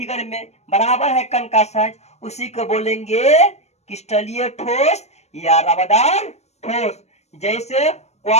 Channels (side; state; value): right; late; 0.32 ms